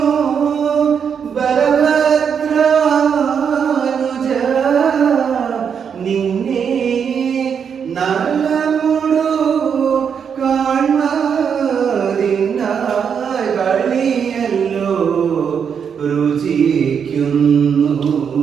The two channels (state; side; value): quieter; left; 7.1 dB